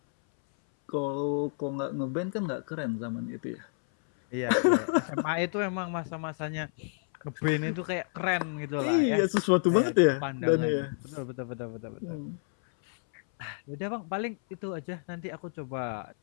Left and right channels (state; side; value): silent; right; 58 dB below the other